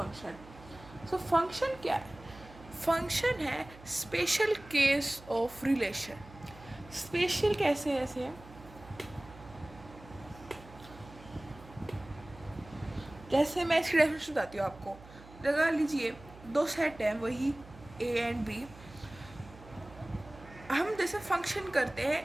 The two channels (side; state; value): right; noise; hum, 19 dB below the sound